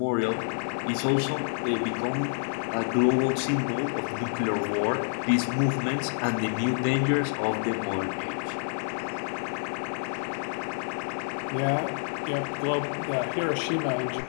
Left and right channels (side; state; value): right; silent; 59 dB below the other